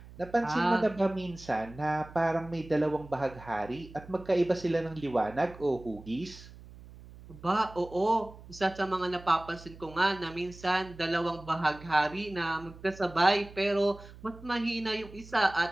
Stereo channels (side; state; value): right; noise; hum, 18 dB below the sound